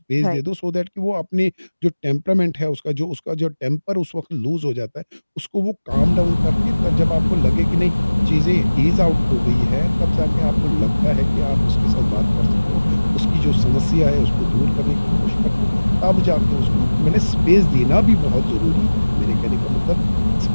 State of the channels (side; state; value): both; inverted; correlation -1.00